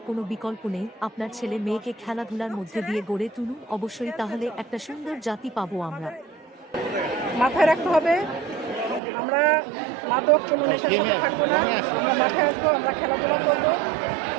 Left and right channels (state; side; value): drops out; left; at 9.0 s